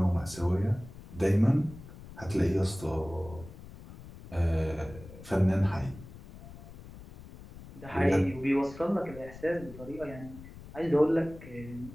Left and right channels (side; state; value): left; noise; rumble, 16 dB below the sound